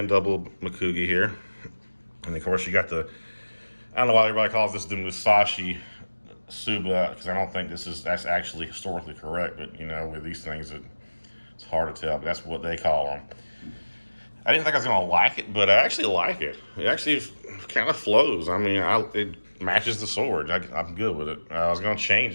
double Mekugi here. And of course you got I don't know why everybody calls this the Musashi Tsuba, because I don't think that's actually historically correct, but with these things it's hard to tell, but that's what they call them. I didn't think I was going to like it, but I actually like it. It actually kind of flows. I mean, it matches the sword. I'm good with it. I was going to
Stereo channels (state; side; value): inverted; both; correlation -1.00